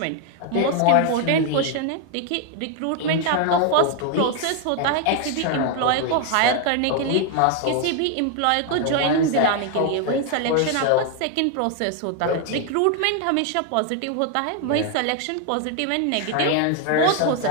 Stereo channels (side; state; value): both; different; correlation 0.00